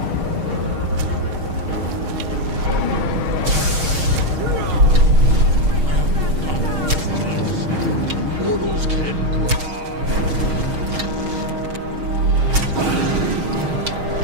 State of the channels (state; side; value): late; left; 6.4 ms